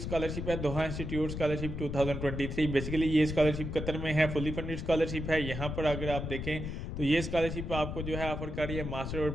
है, दोहा इंस्टीट्यूट स्कॉलरशिप 2023, बेसिकली ये स्कॉलरशिप कतर में है, फुली फंडेड स्कॉलरशिप है। यहाँ पर अगर आप देखें तो ये स्कॉलरशिप आपको जो है ऑफर कर रही है मास्टर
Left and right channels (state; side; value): noise; left; rumble, 5 dB below the sound